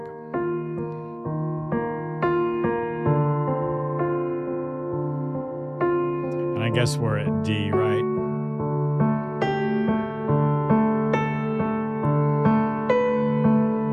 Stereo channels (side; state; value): both; identical; correlation 1.00